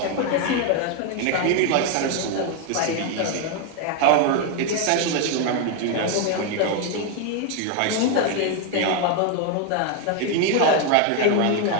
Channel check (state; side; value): different; both; correlation 0.01